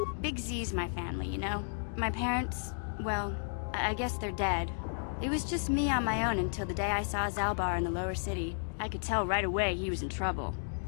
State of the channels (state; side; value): silent; right; digital silence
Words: Big Z's my family, you know? My parents, well, I guess they're dead. It was just me on my own until the day I saw Zalbar in the lower city. I could tell right away he was in trouble.